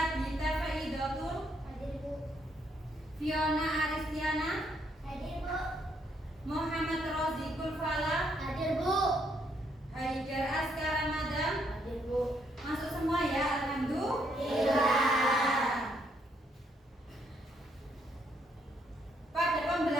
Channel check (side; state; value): both; normal; correlation 0.73